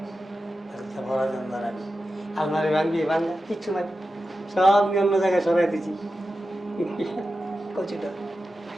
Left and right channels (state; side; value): normal; both; correlation 0.92